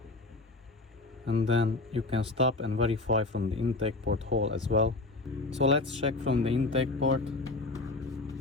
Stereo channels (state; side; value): quieter; right; 3.2 dB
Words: and then you can stop and verify from the intake port hole as well. So let's check from the intake port.